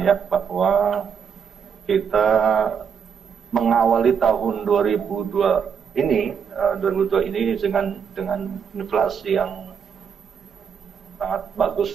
ya, bahwa kita mengawali tahun 2022 ini dengan inflasi yang sangat bagus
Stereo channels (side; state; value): left; quieter; 7.0 dB